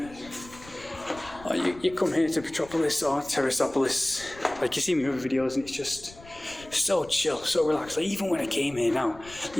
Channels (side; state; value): left; noise; rumble, 20 dB below the sound